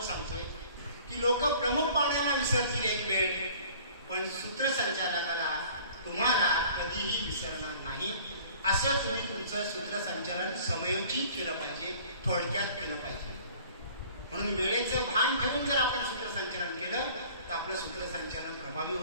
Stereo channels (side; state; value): both; inverted; correlation -0.50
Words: सांगतोय की लोक प्रमुख पाहुण्यांना विसरतील एक वेळ, पण सूत्रसंचालकाला तुम्हाला कधीही विसरणार नाही. असं तुम्ही तुमचं सूत्रसंचालन समयोचित केलं पाहिजे, थोडक्यात केलं पाहिजे. म्हणून वेळेचं भान ठेवून जर आपण सूत्रसंचालन केलं तर आपलं सूत्रसंचालन प्रभावी